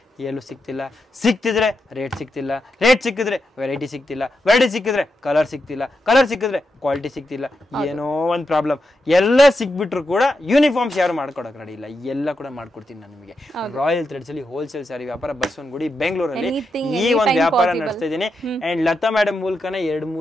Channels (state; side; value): normal; both; correlation 0.86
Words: ಎಲ್ಲೂ ಸಿಗ್ತಿಲ್ಲ. ಸಿಕ್ತಿದ್ರೆ ರೇಟ್ ಸಿಗ್ತಿಲ್ಲ, ರೇಟ್ ಸಿಕ್ಕಿದ್ರೆ ವೆರೈಟಿ ಸಿಗ್ತಿಲ್ಲ, ವೆರೈಟಿ ಸಿಕ್ಕಿದ್ರೆ ಕಲರ್ ಸಿಗ್ತಿಲ್ಲ, ಕಲರ್ ಸಿಕ್ಕಿದ್ರೆ ಕ್ವಾಲಿಟಿ ಸಿಗ್ತಿಲ್ಲ. ಏನೋ ಒಂದು ಪ್ರಾಬ್ಲಮ್. ಎಲ್ಲ ಸಿಕ್ಬಿಟ್ರು ಕೂಡ ಯೂನಿಫಾರ್ಮ್ಸ್ ಯಾರು ಮಾಡ್ಕೊಡಕ್ ರೆಡಿ ಇಲ್ಲ. ಎಲ್ಲ ಕೂಡ ಮಾಡ್ಕೊಡ್ತೀನಿ ನಾನು ನಿಮಗೆ. ರಾಯಲ್ ಥ್ರೆಡ್ಸ್ ಅಲ್ಲಿ ಹೋಲ್ಸೇಲ್ ಸ್ಯಾರಿ ವ್ಯಾಪಾರ ಬಸವನಗುಡಿ ಬೆಂಗಳೂರಲ್ಲಿ ಈ ಒಂದು ವ್ಯಾಪಾರ ನಡೆಸ್ತಾ ಇದ್ದೀನಿ. ಅಂಡ್ ಲತಾ ಮೇಡಮ್ ಮೂಲಕನೇ